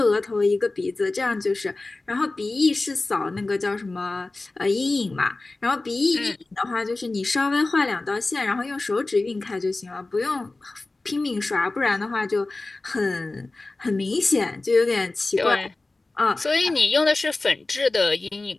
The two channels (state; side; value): quieter; right; 3.2 dB